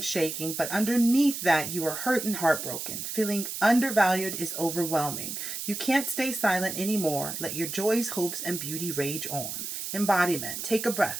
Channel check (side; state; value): right; noise; hiss, 5 dB below the sound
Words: shaking, but underneath that you are hurt and heartbroken. Feeling undervalued is overwhelming. You can't stay silent anymore. Let your joys, hopes, and beauty rage on. Embodiment. Take a